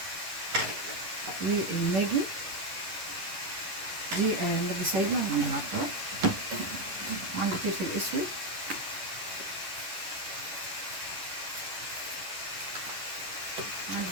والماجي دي ماجي سايبه من العطار، وعندي فلفل اسود، وعندي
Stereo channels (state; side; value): late; left; 11 ms